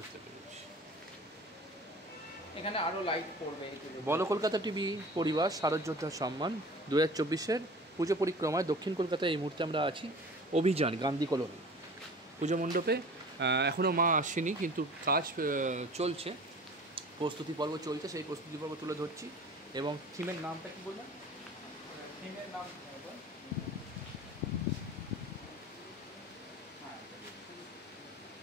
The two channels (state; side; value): normal; both; correlation 0.42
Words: পেরেছি। এখানে আরও লাইট পড়বে। বলো কলকাতা টিভি পরিবার শারদযোদ্ধার সম্মান 2024-এর পুজো পরিক্রমায় দক্ষিণ কলকাতায় এই মুহূর্তে আমরা আছি। অভিযান গান্ধী কলোনি পুজো মণ্ডপে। এখনও মা আসেনি, কিন্তু কাজ চলছে, প্রস্তুতি পর্ব চলছে, সেই প্রস্তুতি পর্ব তুলে ধরছি। এবং থিমের নামটা কি বললাম? থিমের নাম